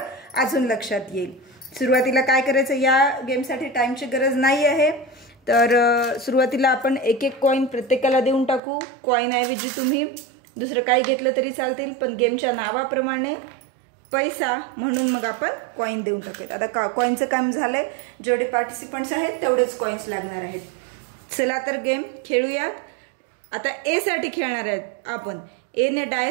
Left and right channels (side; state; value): left; drops out; at 8.6 s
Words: अजून लक्षात येईल। सुरुवातीला काय करायचं, या गेमसाठी टाइमची गरज नाही आहे, तर सुरुवातीला आपण एक कॉइन प्रत्येकाला देऊन टाकू। कॉइन ऐवजी तुम्ही दुसरं काही घेतलं तरी चालतील, पण गेमच्या नावाप्रमाणे पैसा म्हणून मग आपण कॉइन देऊन टाकूयात। आता कॉइनचं काम झालंय, जेवढे पार्टिसिपंट्स आहेत तेवढेच कॉइन्स लागणार आहेत। चला तर गेम खेळूयात। आता ए साठी खेळणार आहेत आपण। ए ने